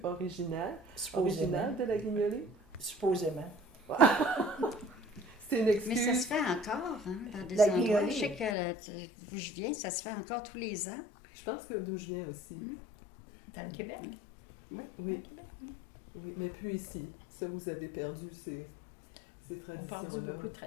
original de la guignolée? Supposément. C'est une Mais excuse. ça se fait encore, hein, dans des La endroits. guignolée. Je sais que d'où je viens, ça se fait encore tous les ans. Je pense que d'où je viens aussi. Dans le Québec. Oui. Oui, mais plus ici. Ça, vous avez perdu ces On parle traditions-là. beaucoup de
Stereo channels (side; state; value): right; drops out; at 8.6 s